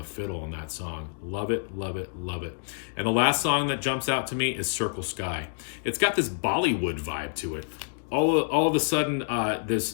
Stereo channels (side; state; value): right; silent; digital silence